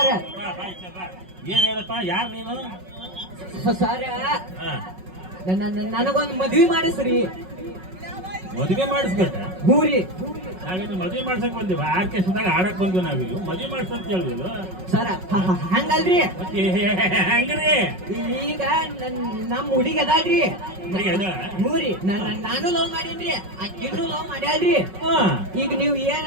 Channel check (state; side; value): late; left; 5.4 ms